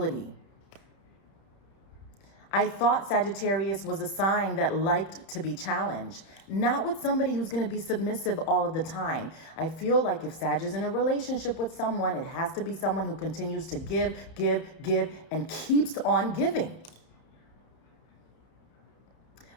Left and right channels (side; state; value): right; late; 31 ms